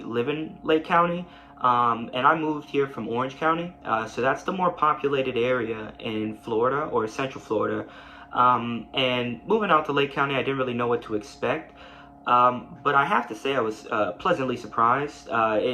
live in Lake County, and I moved here from Orange County, so that's the more populated area in Florida or Central Florida. And moving out to Lake County, I didn't really know what to expect. But I have to say I was pleasantly surprised.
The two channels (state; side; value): identical; both; correlation 1.00